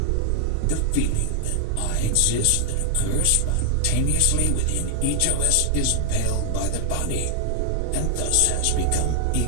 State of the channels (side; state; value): both; different; correlation 0.00